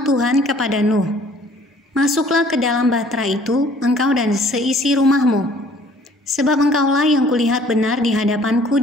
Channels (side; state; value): both; normal; correlation 0.56